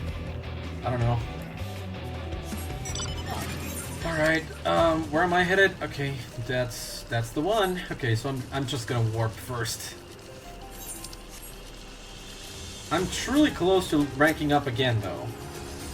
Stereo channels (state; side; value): identical; both; correlation 1.00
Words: I don't know. Alright, where am I headed? Okay, that's the one. Okay, so I'm just gonna warp first. I'm truly close to ranking up again, though.